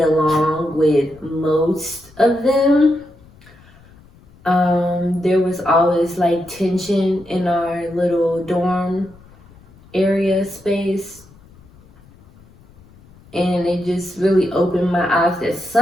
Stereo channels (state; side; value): noise; left; rumble, 26 dB below the sound